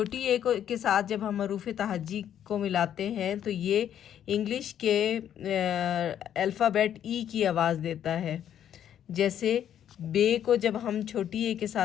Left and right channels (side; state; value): right; quieter; 10.1 dB